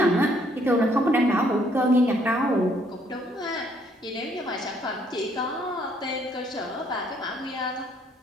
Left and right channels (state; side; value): normal; both; correlation 0.67